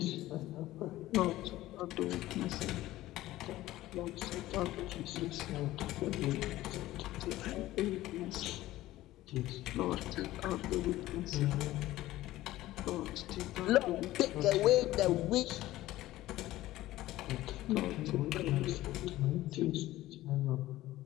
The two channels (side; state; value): right; quieter; 16.0 dB